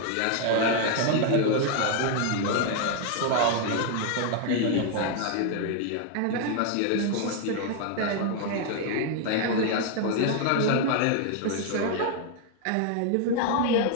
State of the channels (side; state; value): both; different; correlation 0.00